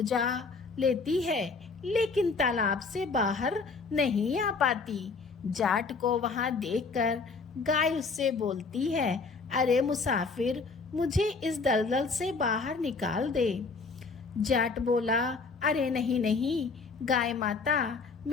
लेती है, लेकिन तालाब से बाहर नहीं आ पाती। जाट को वहां देखकर गाय उससे बोलती है, अरे मुसाफिर, मुझे इस दलदल से बाहर निकाल दे। जाट बोला, अरे नहीं नहीं गाय माता,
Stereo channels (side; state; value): right; quieter; 4.5 dB